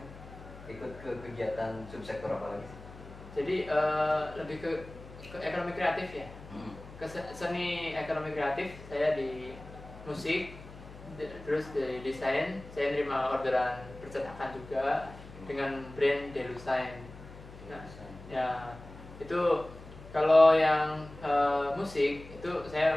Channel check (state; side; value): noise; left; hum, 16 dB below the sound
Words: ikut ke kegiatan subsektor apa lagi sih? Jadi lebih ke ekonomi kreatif ya. Ke seni ekonomi kreatif saya di musik, terus di desain saya nerima orderan percetakan juga dengan brand Delusign. Nah, ya itu kalau yang musik itu